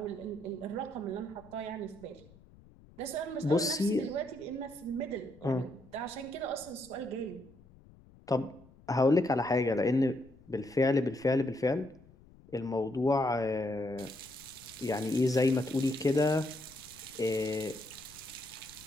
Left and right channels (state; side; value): noise; left; rumble, 24 dB below the sound